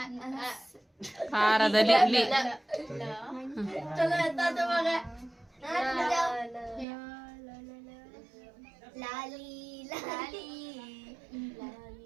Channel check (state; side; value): drops out; left; at 6.9 s